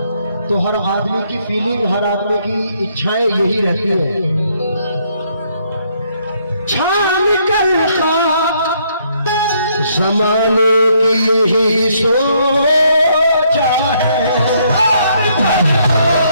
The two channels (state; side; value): inverted; both; correlation -0.70